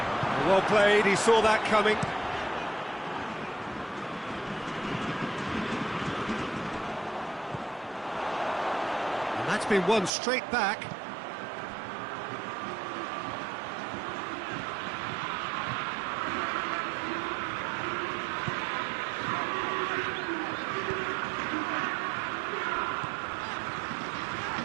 Well played, he saw that coming. And that's been won straight back.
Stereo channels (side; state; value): left; drops out; at 10.1 s